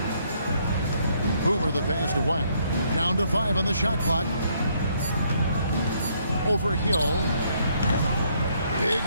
Boomer the pass to Wang. Down to 5 on the shot clock. Over Hill. Big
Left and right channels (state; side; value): inverted; both; correlation -0.70